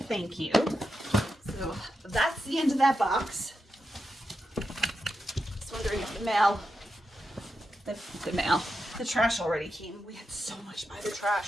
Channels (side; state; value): both; normal; correlation 0.87